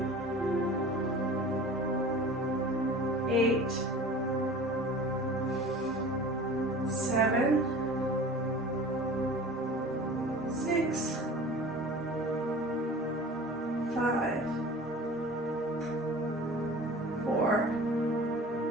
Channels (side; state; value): both; normal; correlation 0.40